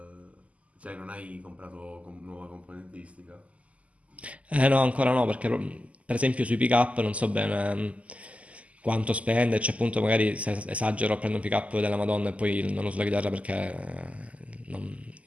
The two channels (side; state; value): left; late; 0.068 ms